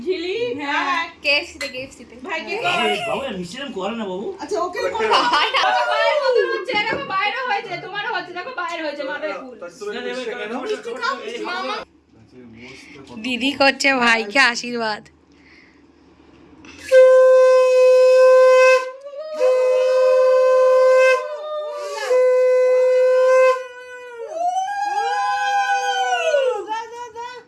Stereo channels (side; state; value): both; identical; correlation 1.00